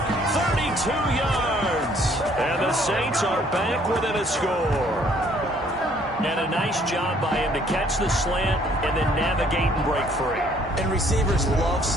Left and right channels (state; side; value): normal; both; correlation 0.62